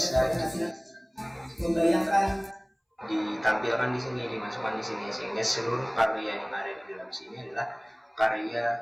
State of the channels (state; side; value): identical; both; correlation 1.00